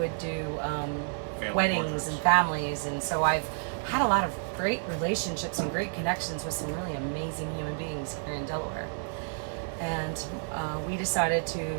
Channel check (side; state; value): left; silent; 58 dB below the other